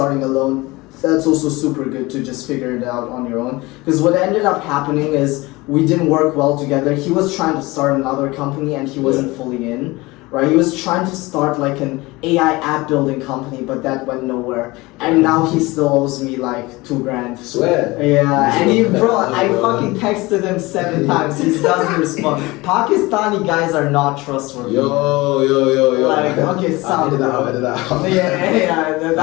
alone, that's also super good to just figure it out on your own. Because what ended up happening is we didn't work well together. He was trying to start another company and he wasn't fully in. Right, he was trying to start like an AI app building company, but that went nowhere. And now he still owes me like $2,000. Swear. Yeah, and he, bro, I fucking texted him 7 times. He doesn't respond. Pakistani guys are not trustworthy. Yo. Like, okay, sound. Edit that out. Yeah.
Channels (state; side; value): quieter; right; 21.9 dB